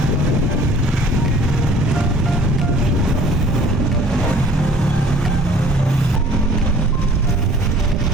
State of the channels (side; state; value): both; normal; correlation 0.51